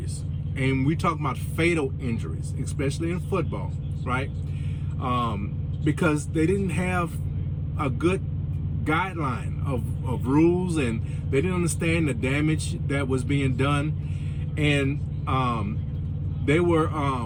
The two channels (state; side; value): identical; both; correlation 1.00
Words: and we talk about fatal injuries, especially in football, right? Because they didn't have a good guideline of rules, and they didn't understand the damage that was being done, and they